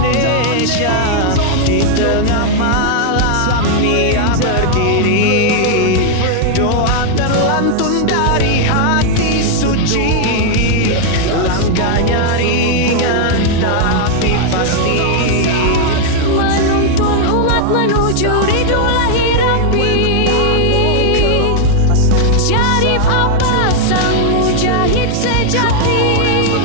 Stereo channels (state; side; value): different; both; correlation 0.00